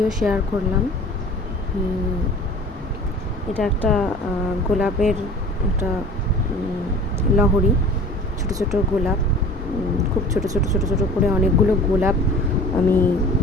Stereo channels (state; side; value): normal; both; correlation 0.42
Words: শেয়ার করলাম। এটা একটা গোলাপের একটা লহরী, ছোট ছোট গোলাপ, খুব ছোট ছোট ছোট ছোট করে অনেকগুলো গোলাপ আমি